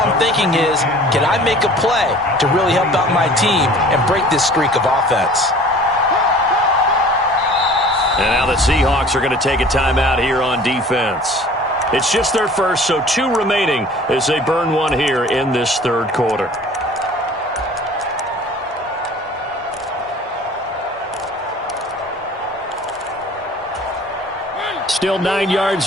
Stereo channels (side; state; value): both; normal; correlation 0.47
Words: thinking is, can I make a play to really help out my team and break this streak of offense? And now the Seahawks are going to take a timeout here on defense. It's just their first, so 2 remaining as they burn one here in this third quarter. Still 9 yards